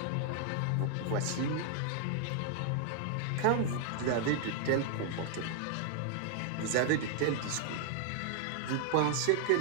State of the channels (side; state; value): both; different; correlation -0.01